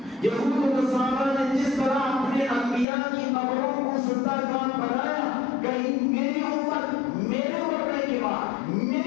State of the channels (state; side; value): drops out; right; at 2.9 s